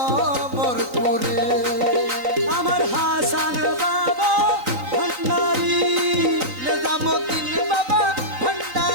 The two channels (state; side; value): late; left; 3.9 ms